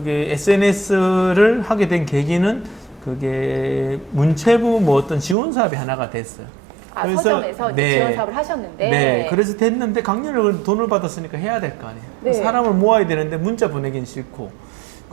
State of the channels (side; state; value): left; drops out; at 5.4 s